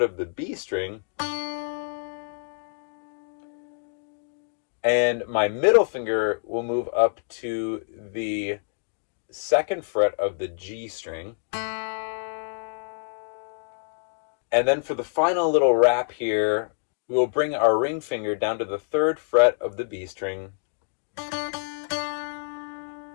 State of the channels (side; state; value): right; silent; digital silence